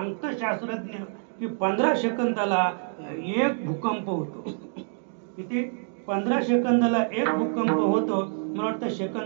शास्त्रज्ञ की 15 सेकंदाला एक भूकंप होतो. किती? 15 सेकंदाला एक भूकंप होतो. मला वाटतं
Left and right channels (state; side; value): silent; left; 60 dB below the other